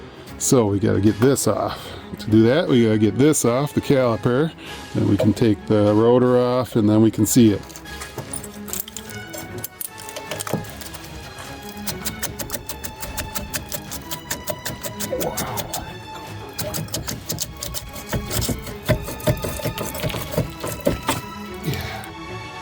So we gotta get this off. To do that, we gotta get this off, the caliper. Then we can take the rotor off and then we can see it.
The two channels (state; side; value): identical; both; correlation 1.00